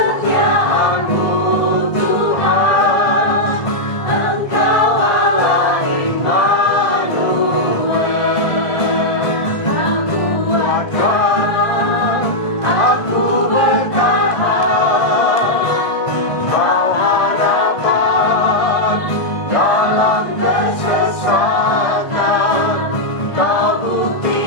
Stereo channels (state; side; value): late; right; 1.5 ms